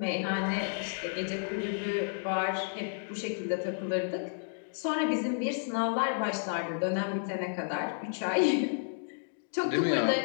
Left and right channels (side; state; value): right; silent; digital silence